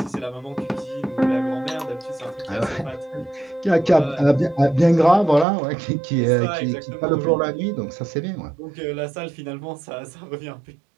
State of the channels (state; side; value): drops out; left; at 5.5 s